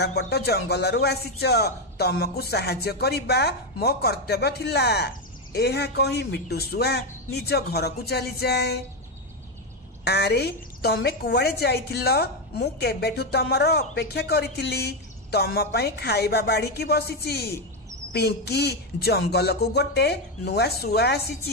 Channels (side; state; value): both; normal; correlation 0.08